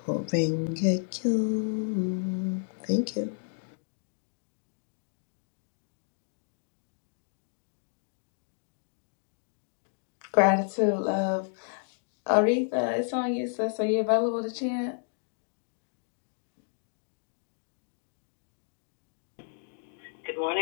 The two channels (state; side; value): silent; right; 57 dB below the other